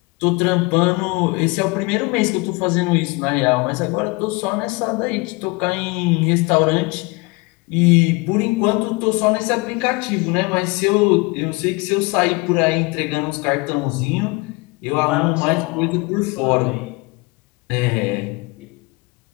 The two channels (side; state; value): right; quieter; 26.3 dB